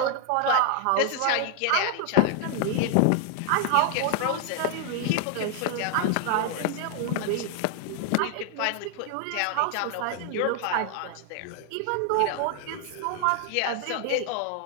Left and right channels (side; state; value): both; different; correlation 0.00